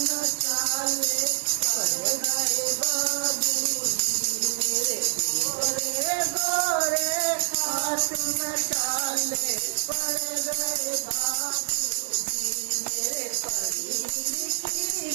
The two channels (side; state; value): left; silent; 61 dB below the other